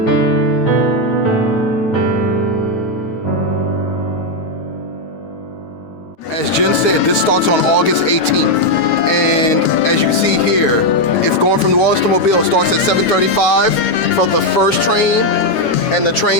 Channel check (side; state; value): right; late; 9.1 ms